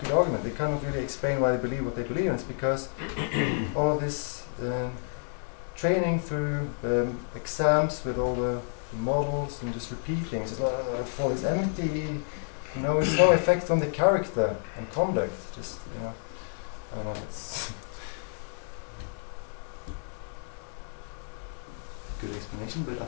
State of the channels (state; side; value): silent; right; 58 dB below the other